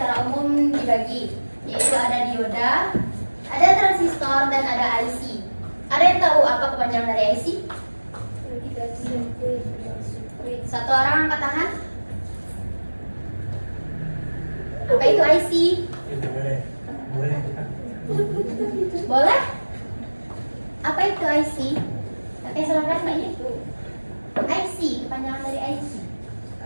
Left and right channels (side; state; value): both; inverted; correlation -1.00